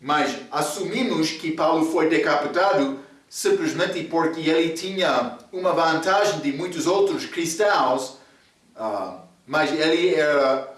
Mas assumimos que Paulo foi decapitado simplesmente porque ele tinha uma vantagem de muitos outros cristãos, mas ele era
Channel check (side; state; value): both; identical; correlation 1.00